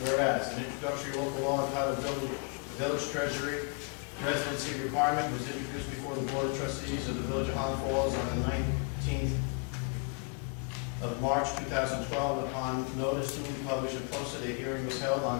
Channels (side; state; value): right; quieter; 34.5 dB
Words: Whereas an introductory local law entitled Village Treasury Residency Requirement was introduced before the Board of Trustees of the Village of Highland Falls on the 19th of March 2012. Upon notice to be published and posted, a hearing was held